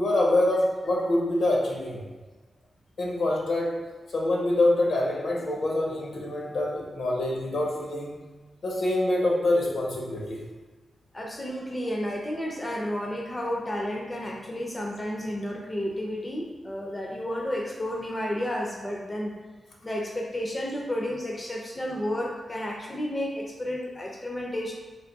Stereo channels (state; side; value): normal; both; correlation 0.90